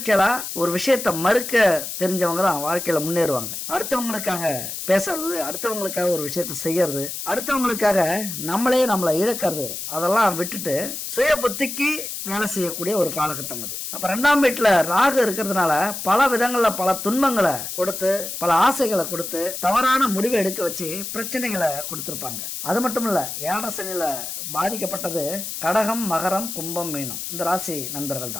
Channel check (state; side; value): noise; left; hiss, 6 dB below the sound